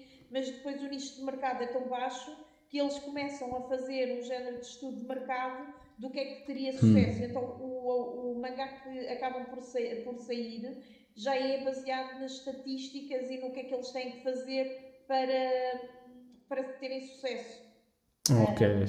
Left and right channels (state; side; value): identical; both; correlation 1.00